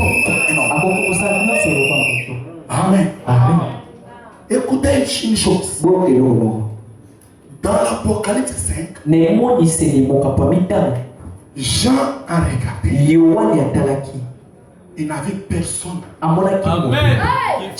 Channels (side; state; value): both; identical; correlation 1.00